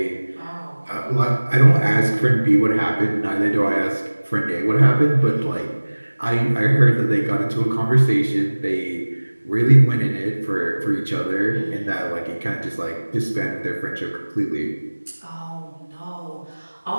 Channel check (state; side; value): inverted; both; correlation -1.00